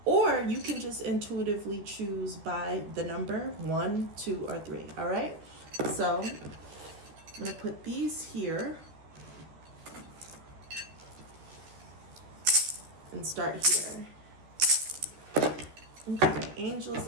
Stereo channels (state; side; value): late; left; 13 ms